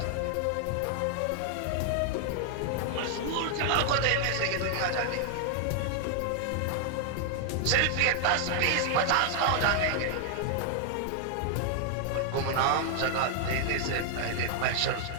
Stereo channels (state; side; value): different; both; correlation 0.00